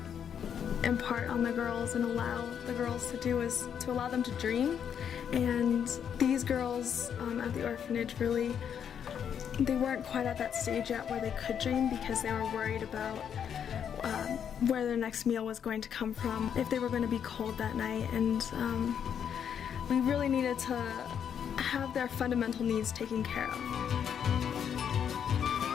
impart on the girls and allow the girls to do is to allow them to dream. And these girls at the orphanage really, they weren't quite at that stage yet where they could dream because they were worried about where their next meal was going to come from, if they were going to be cold that night, and we really needed to have their fundamental needs taken care of.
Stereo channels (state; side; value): quieter; right; 8.3 dB